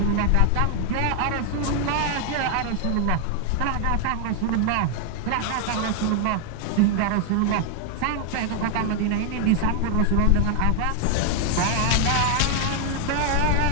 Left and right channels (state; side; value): different; both; correlation 0.00